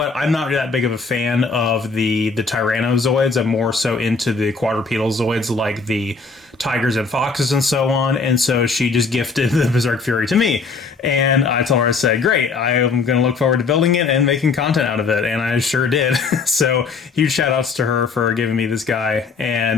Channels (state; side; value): quieter; right; 4.6 dB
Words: I'm not that big of a fan of the Tyrannozoids. I'm more so into the quadrupedal Zoids like the tigers and foxes and so on. And so she just gifted the Berserk Fury to me. And I told her, I said, great, I am going to look forward to building it and making content out of it. And I sure did. So huge shout outs to her for giving me this guy,